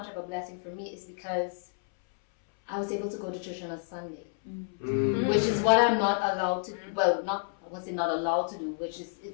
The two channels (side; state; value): right; silent; 58 dB below the other